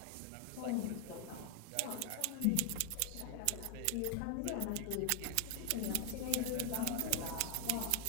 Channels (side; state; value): both; different; correlation 0.00